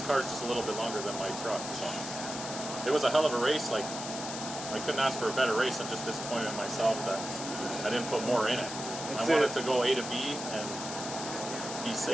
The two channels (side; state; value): left; noise; hiss, 7 dB below the sound